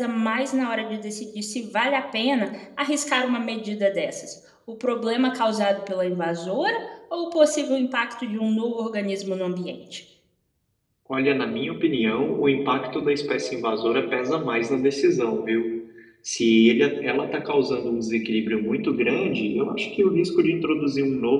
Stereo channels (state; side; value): identical; both; correlation 1.00